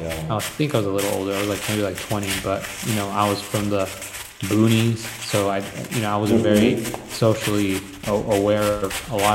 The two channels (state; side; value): identical; both; correlation 1.00